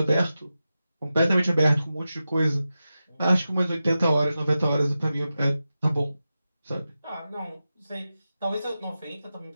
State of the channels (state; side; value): inverted; both; correlation -0.92